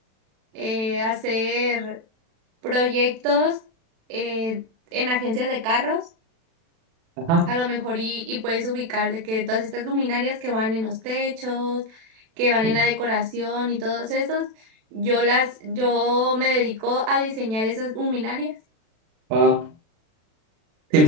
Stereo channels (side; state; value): left; late; 36 ms